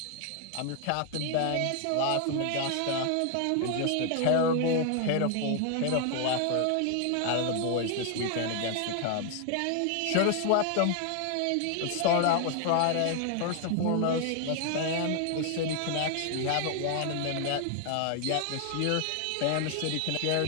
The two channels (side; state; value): both; different; correlation 0.00